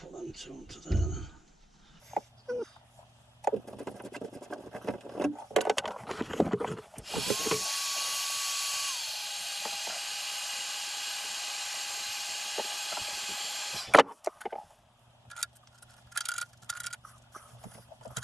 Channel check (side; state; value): both; normal; correlation 0.95